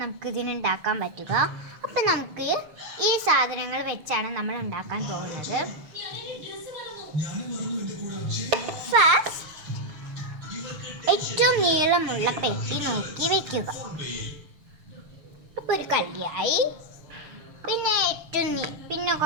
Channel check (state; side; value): late; left; 6.7 ms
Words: നമുക്ക് ഇതിനുണ്ടാക്കാൻ പറ്റുക. അപ്പം നമുക്ക് ഈ സാധനങ്ങൾ വെച്ചാണ് നമ്മൾ ഉണ്ടാക്കാൻ പോകുന്നത്. ഫസ്റ്റ് ഏറ്റവും നീളമുള്ള പെട്ടി നോക്കി വെക്കുക. അപ്പോൾ ഒരു കല്യായി. പിന്നെ